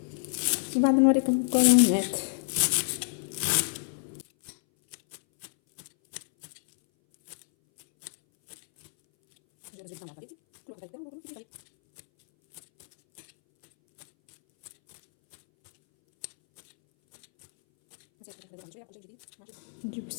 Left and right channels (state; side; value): silent; right; 59 dB below the other